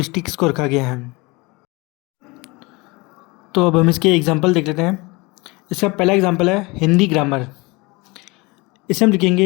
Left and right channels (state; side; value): quieter; right; 25.1 dB